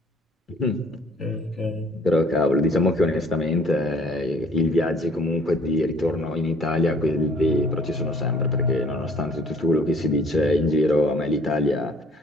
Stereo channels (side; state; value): both; normal; correlation 0.57